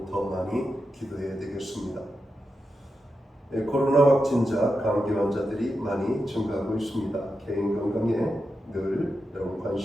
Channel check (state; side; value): normal; both; correlation 0.88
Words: 더 많이 기도해야 되겠습니다. 코로나 확진자, 감기 환자들이 많이 증가하고 있습니다. 개인 건강에 늘 여러분